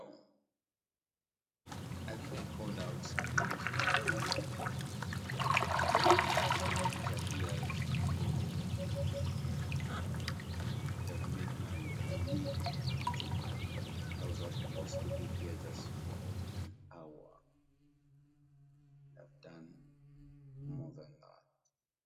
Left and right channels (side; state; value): both; identical; correlation 1.00